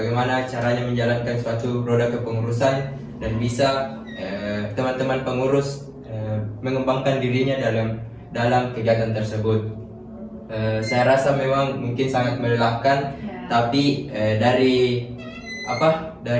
caranya menjalankan suatu roda kepengurusan, dan bisa teman-teman pengurus mengembangkan dirinya dalam kegiatan tersebut. Saya rasa memang mungkin sangat melelahkan, tapi dari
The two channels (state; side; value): identical; both; correlation 1.00